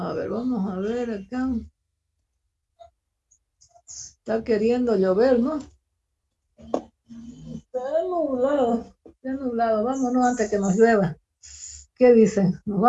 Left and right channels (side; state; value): both; identical; correlation 1.00